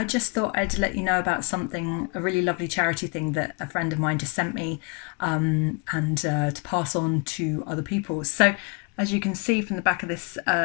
just thought I'd let you know about something, a really lovely charity thing that a friend of mine just sent me and to pass on to other people. So as you can see from the back of this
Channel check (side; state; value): right; quieter; 33.0 dB